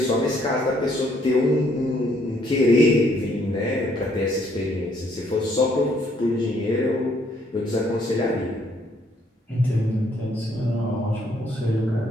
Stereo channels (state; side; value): normal; both; correlation 0.68